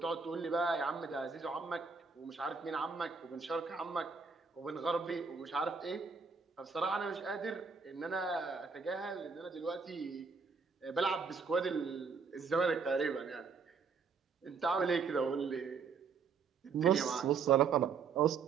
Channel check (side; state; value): left; quieter; 5.4 dB